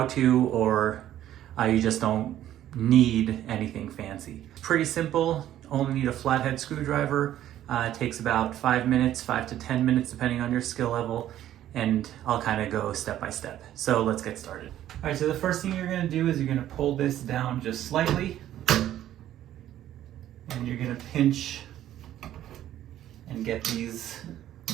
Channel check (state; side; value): quieter; left; 12.3 dB